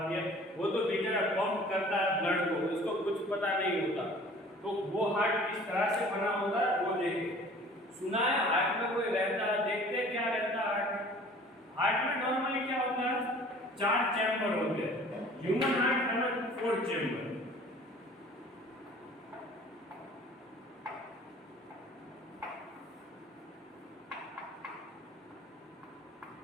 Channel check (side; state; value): both; normal; correlation 0.49